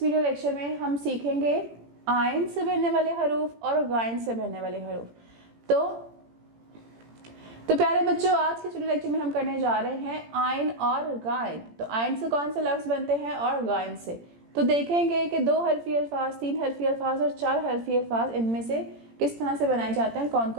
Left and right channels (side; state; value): left; late; 17 ms